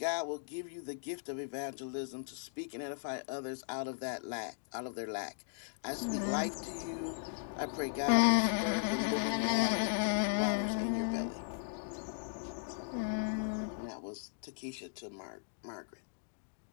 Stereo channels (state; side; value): silent; right; digital silence